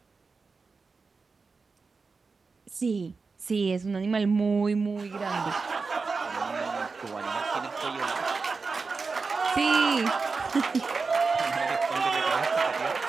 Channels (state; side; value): quieter; left; 4.4 dB